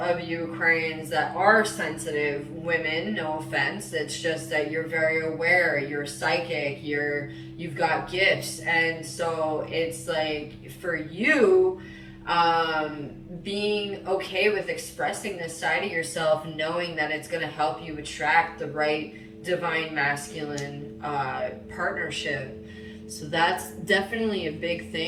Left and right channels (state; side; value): identical; both; correlation 1.00